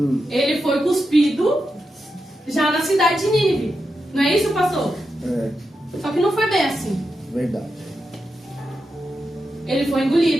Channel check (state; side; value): normal; both; correlation 0.87